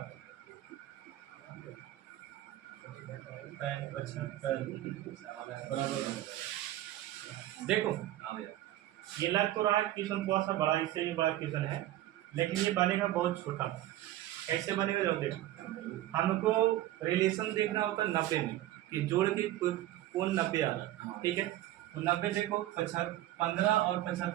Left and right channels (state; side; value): quieter; left; 14.5 dB